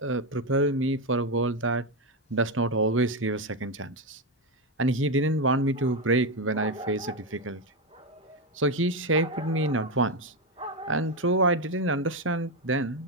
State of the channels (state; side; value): normal; both; correlation 0.09